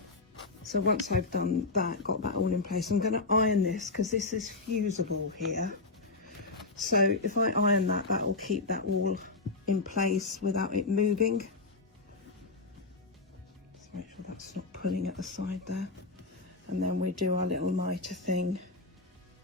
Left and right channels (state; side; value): quieter; right; 3.6 dB